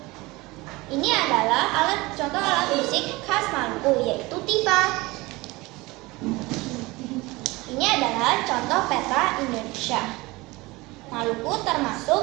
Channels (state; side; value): quieter; left; 22.1 dB